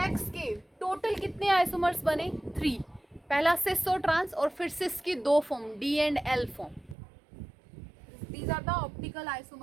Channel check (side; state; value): left; drops out; at 7.0 s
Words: के टोटल कितने आइसोमर्स बने, 3। पहला सिस और ट्रांस, और फिर सिस की 2 form, D and L form. These are the optical